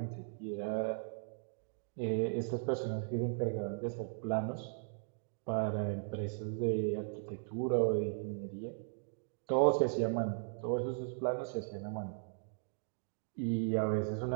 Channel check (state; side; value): silent; left; digital silence